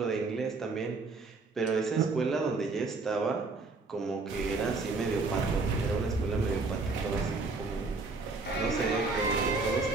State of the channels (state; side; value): quieter; left; 3.8 dB